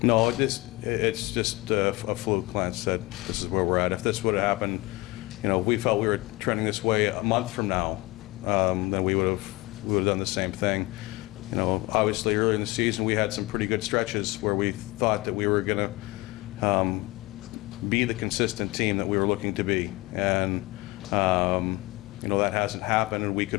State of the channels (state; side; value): quieter; right; 21.7 dB